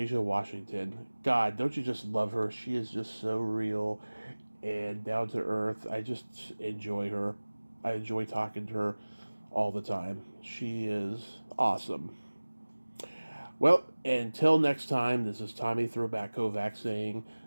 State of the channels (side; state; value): both; inverted; correlation -1.00